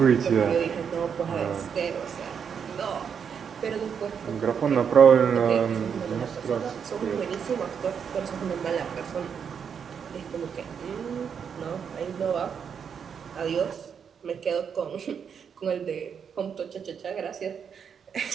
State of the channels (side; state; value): left; quieter; 7.1 dB